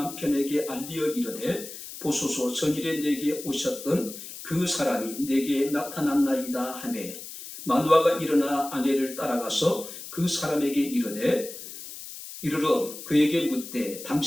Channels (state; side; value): noise; left; hiss, 12 dB below the sound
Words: 알리어 이르되 보소서 전일에 내게 오셨던 그 사람이 내게 나타났나이다 하매 마누아가 일어나 아내를 따라가서 그 사람에게 이르러 그에게 묻되